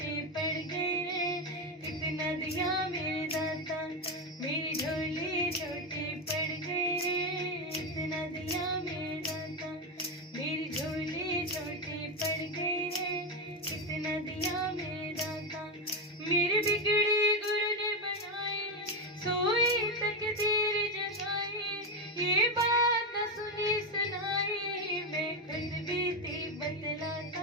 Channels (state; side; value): normal; both; correlation 0.10